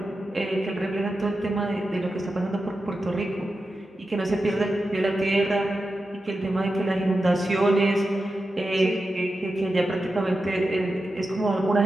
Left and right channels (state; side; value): normal; both; correlation 0.91